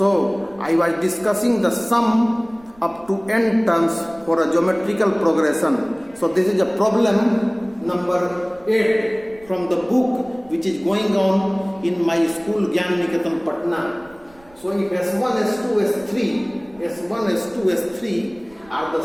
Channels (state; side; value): noise; right; rumble, 27 dB below the sound